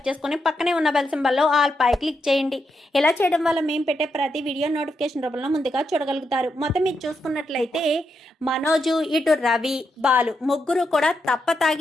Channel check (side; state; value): both; normal; correlation 0.83